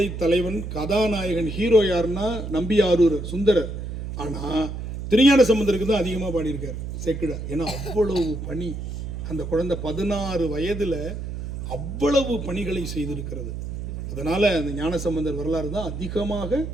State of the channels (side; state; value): right; noise; hum, 6 dB below the sound